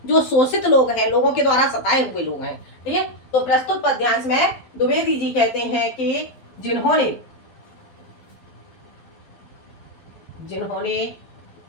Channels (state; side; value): late; right; 12 ms